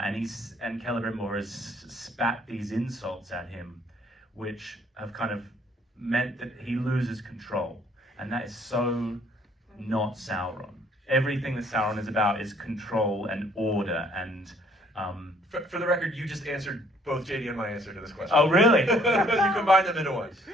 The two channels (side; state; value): both; normal; correlation 0.62